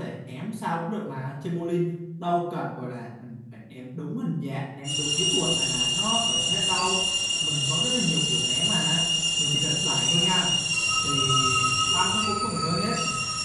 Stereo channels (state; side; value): identical; both; correlation 1.00